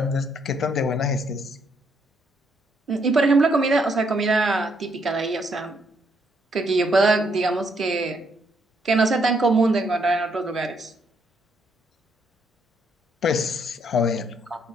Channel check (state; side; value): normal; both; correlation 0.73